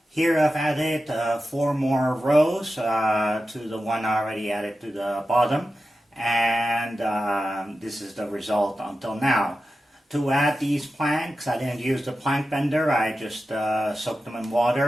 Here I've added 4 more rows to the one I already added to the bottom, and this is the result until now. To add these planks, I didn't use the plank bender. I just soaked them in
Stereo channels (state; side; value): normal; both; correlation 0.92